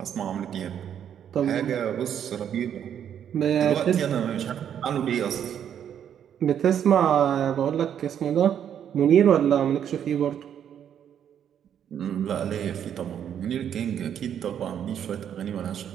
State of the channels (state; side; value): quieter; left; 9.2 dB